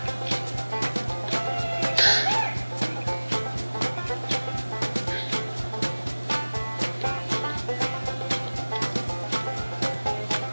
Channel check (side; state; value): both; inverted; correlation -1.00